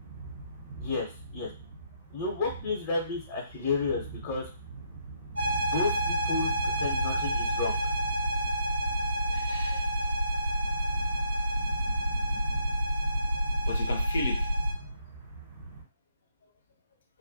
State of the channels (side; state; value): both; inverted; correlation -0.74